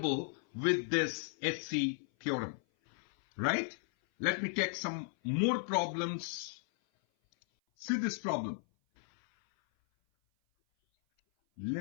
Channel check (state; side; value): silent; right; 54 dB below the other